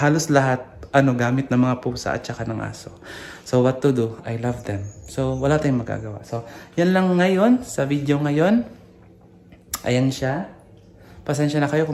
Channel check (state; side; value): identical; both; correlation 1.00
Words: lahat gamit ng mga pusa at saka ng aso. So what to do? I love them. So wala tayong magagawa. So yan lang ngayon sa video ngayon. Ayan siya. Pasensya na kayo